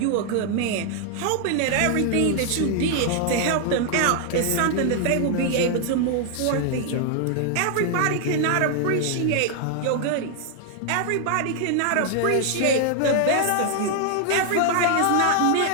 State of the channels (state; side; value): different; both; correlation 0.00